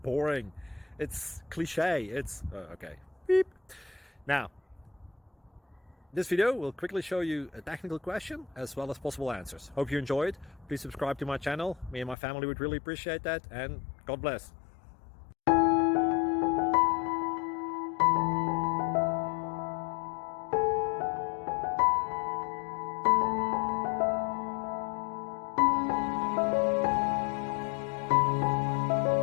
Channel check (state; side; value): drops out; right; at 12.2 s